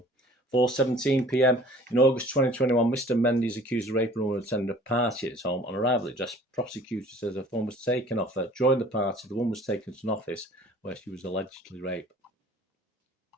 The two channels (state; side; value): normal; both; correlation 0.49